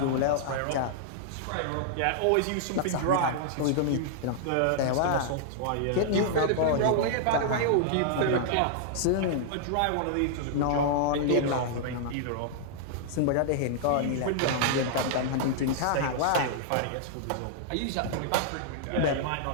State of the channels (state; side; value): different; both; correlation -0.01